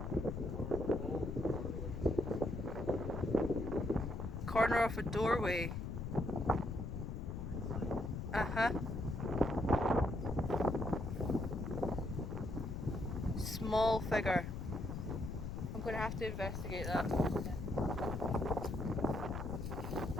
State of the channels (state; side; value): noise; left; rumble, 5 dB below the sound